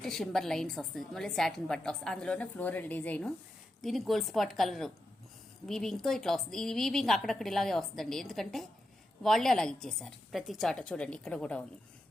షింబర్ లైన్స్ వస్తుంది. మళ్ళీ సాటిన్ పట్టా వస్తుంది. అందులోనే ఫ్లోరల్ డిజైను. దీనికి గోల్డ్ స్పాట్ కలర్ వీవింగ్తో ఇట్లా వస్తుంది. ఈ వీవింగ్ అక్కడక్కడ ఇలాగే వస్తుందండి, ఎందుకంటే వాళ్ళే అలాగ ఇచ్చేసారు. ప్రతి చాట చూడండి, ఇక్కడ కూడా ఉంది,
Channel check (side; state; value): both; normal; correlation 0.87